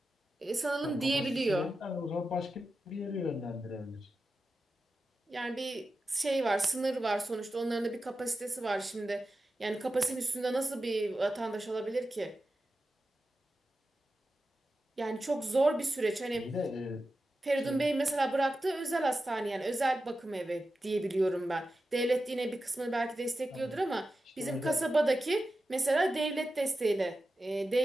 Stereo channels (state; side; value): normal; both; correlation 0.92